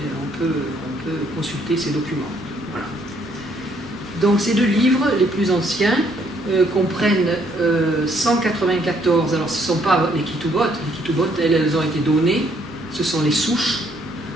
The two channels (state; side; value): noise; right; hum, 27 dB below the sound